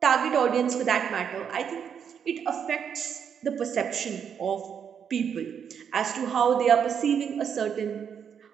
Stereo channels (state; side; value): quieter; left; 7.6 dB